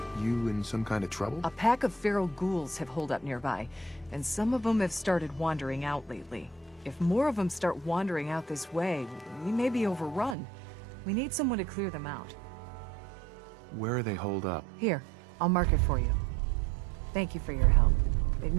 You in some kind of trouble? A pack of feral ghouls have holed up nearby, and some of them have started wandering out lately. If more of them start wandering out this way, we may be overrun. We need someone to clear them out. Where are they holed up? Here, I'll mark it for you. Thank you for your help. It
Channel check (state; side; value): drops out; left; at 10.4 s